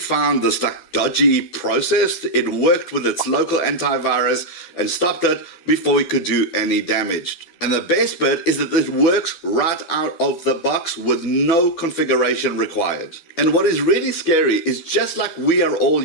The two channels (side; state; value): right; late; 12 ms